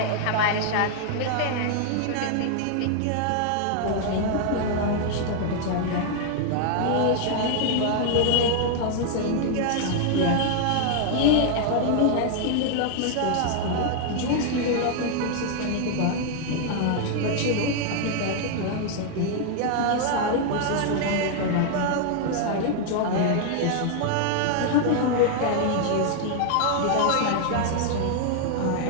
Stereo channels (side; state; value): both; different; correlation 0.00